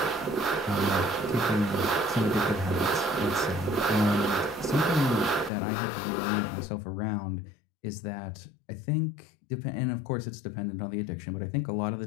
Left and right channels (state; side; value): drops out; right; at 5.5 s